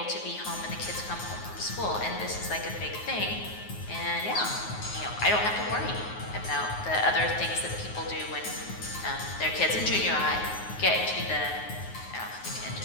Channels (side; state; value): right; late; 9.5 ms